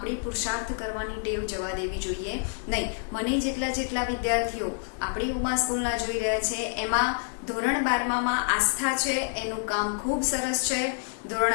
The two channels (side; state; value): right; silent; digital silence